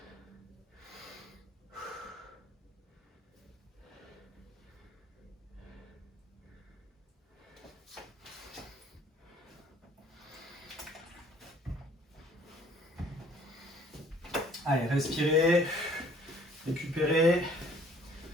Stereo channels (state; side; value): normal; both; correlation 0.57